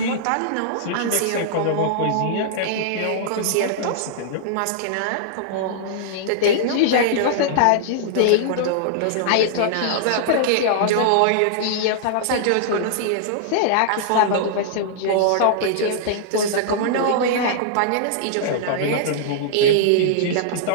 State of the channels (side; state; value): both; different; correlation -0.02